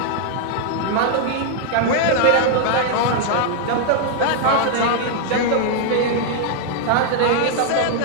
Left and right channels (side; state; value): both; different; correlation 0.00